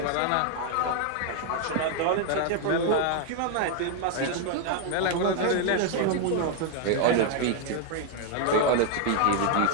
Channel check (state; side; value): different; both; correlation 0.00